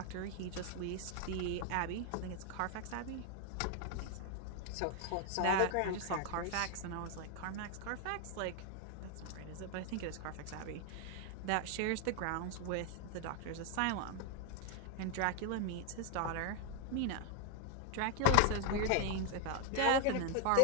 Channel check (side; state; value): both; different; correlation 0.00